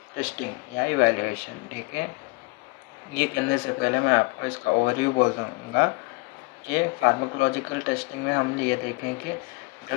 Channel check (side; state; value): right; quieter; 27.0 dB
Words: टेस्टिंग या इवैल्यूएशन। ठीक है, ये करने से पहले मैं आपको इसका ओवरव्यू बोल दूँगा कि फार्माकोलॉजिकल टेस्टिंग में हम ये देखें कि